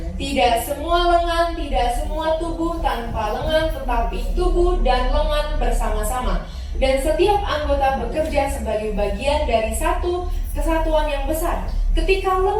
Tidak semua lengan, tidak semua tubuh tanpa lengan, tetapi tubuh dan lengan bersama-sama. Dan setiap anggota bekerja sebagai bagian dari satu kesatuan yang besar. Ketika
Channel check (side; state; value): both; identical; correlation 1.00